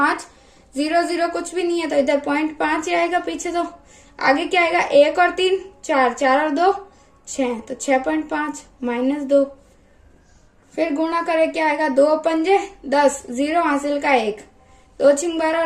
0 0 कुछ भी नहीं है, तो इधर 0.5 ही आएगा पीछे। तो आगे क्या आएगा, 1 और 3 4, 4 और 2 6, तो 6.5 माइनस 2, फिर गुणा करे क्या आएगा, 2 पंजे 10, 0 हासिल का 1, 2 छिंग 12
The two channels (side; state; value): both; identical; correlation 1.00